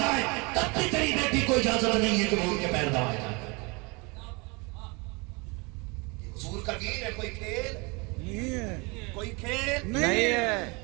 تب بھی تیری بیٹی کو اجازت نہیں ہے کہ وہ ان کے پیر دبائے جائے. حضور کا دین ہے کوئی کھیل نہیں ہے, کوئی کھیل نہیں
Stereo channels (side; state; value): left; quieter; 28.5 dB